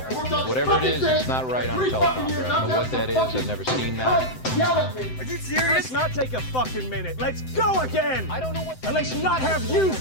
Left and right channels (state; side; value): late; right; 7.8 ms